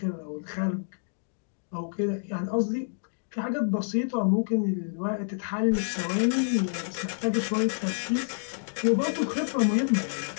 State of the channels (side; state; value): right; silent; digital silence